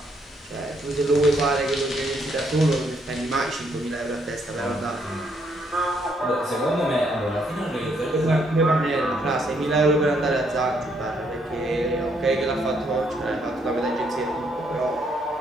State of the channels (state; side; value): normal; both; correlation 0.72